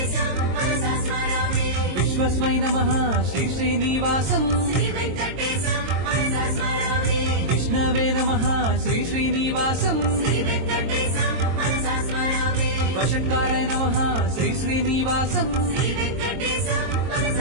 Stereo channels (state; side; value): late; left; 22 ms